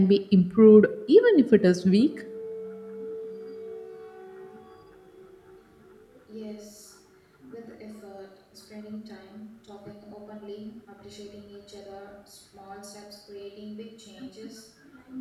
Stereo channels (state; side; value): identical; both; correlation 1.00